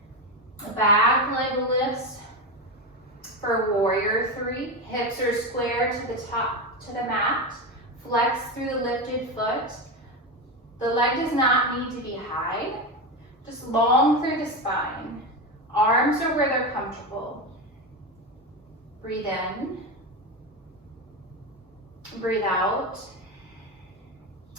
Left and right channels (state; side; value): normal; both; correlation 0.16